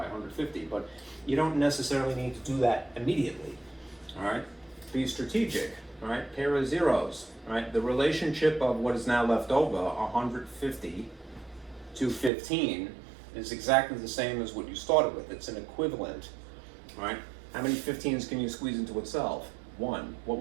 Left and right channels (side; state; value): left; drops out; at 12.3 s